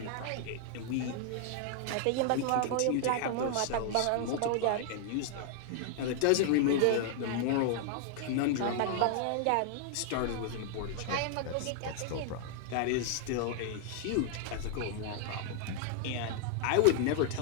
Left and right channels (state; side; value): different; both; correlation 0.00